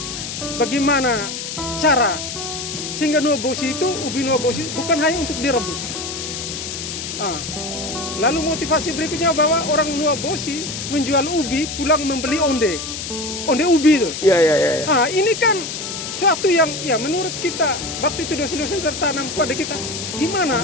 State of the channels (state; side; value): noise; left; hiss, 6 dB below the sound